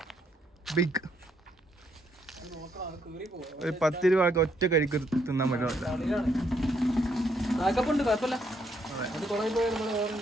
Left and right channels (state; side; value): normal; both; correlation 0.73